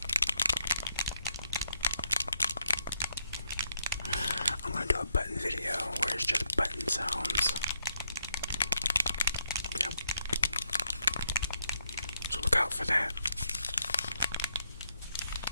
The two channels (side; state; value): both; inverted; correlation -0.77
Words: I'm gonna do a button video where it's just button sounds. Yep. So look out for that.